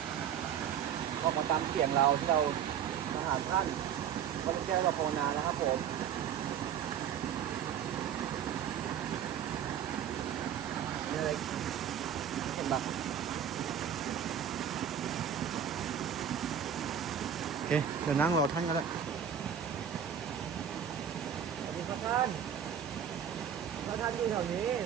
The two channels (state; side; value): quieter; left; 8.6 dB